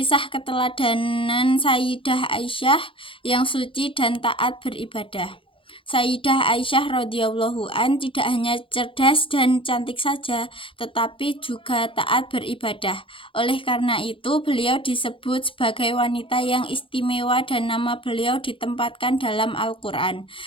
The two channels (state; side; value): late; right; 0.25 ms